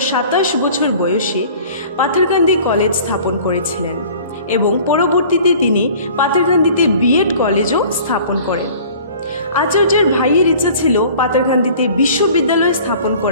27 বছর বয়সে পাথারকান্দি কলেজ স্থাপন করেছিলেন এবং পরবর্তীতে তিনি পাথারকান্দিতে বিএড কলেজও স্থাপন করেন। আচার্যের ভাইয়ের ইচ্ছা ছিল পাথারকান্দিতে বিশ্ববিদ্যালয় স্থাপন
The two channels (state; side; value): inverted; both; correlation -0.47